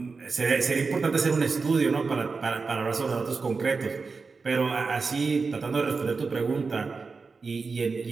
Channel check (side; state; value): left; quieter; 4.5 dB